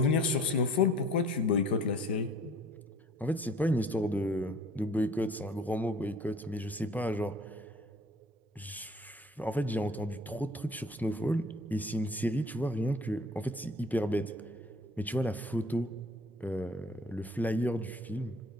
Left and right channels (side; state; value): both; normal; correlation 0.51